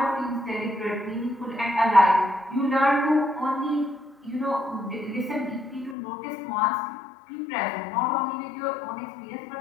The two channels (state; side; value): drops out; right; at 6.0 s